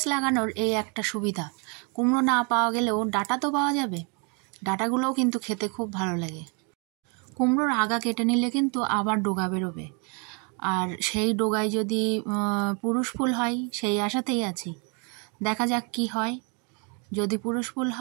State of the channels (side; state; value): left; quieter; 34.5 dB